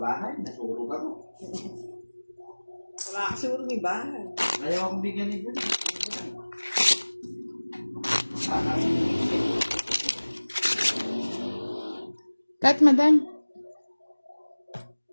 Nasurog ako. Wala kasi ulo may bahay. Ayaw akong bigyan ni Jun. Cut, madam.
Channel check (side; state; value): both; inverted; correlation -1.00